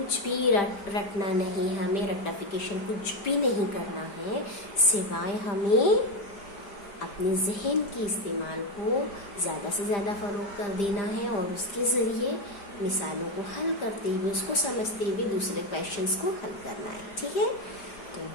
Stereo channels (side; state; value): right; late; 5.0 ms